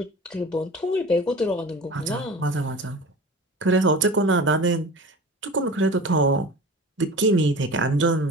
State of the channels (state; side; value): normal; both; correlation 0.36